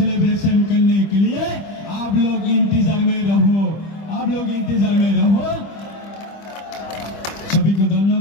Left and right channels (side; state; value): right; late; 25 ms